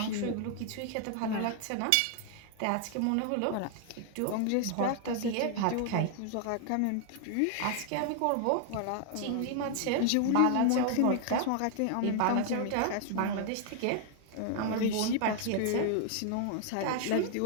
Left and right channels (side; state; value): both; different; correlation 0.00